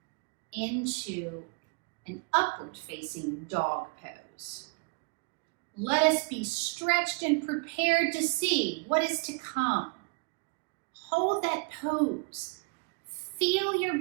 into an upward facing dog pose. Let us be stretched and prepared to see what is to come. Hold that pose. Feel your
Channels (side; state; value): left; quieter; 32.7 dB